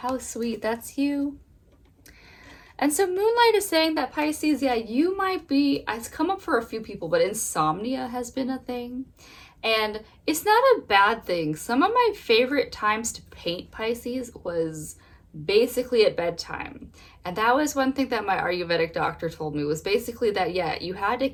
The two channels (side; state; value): both; identical; correlation 1.00